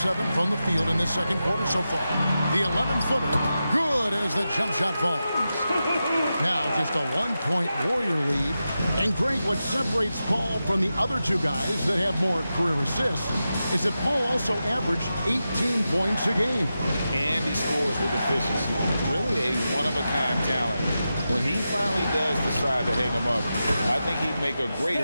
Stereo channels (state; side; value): inverted; both; correlation -0.91